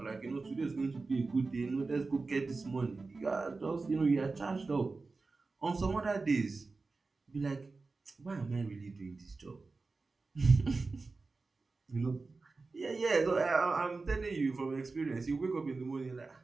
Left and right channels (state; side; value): quieter; left; 3.9 dB